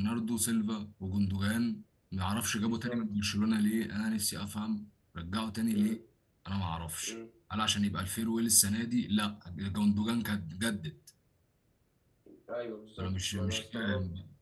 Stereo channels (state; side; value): identical; both; correlation 1.00